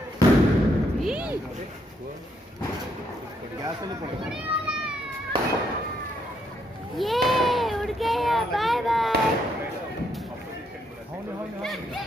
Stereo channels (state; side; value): normal; both; correlation 0.74